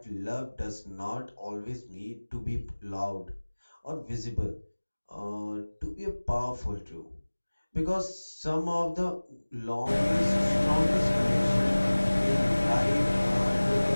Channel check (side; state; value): both; inverted; correlation -1.00